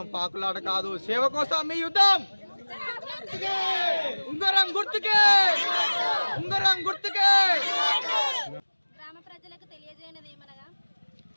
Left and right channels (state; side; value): inverted; both; correlation -1.00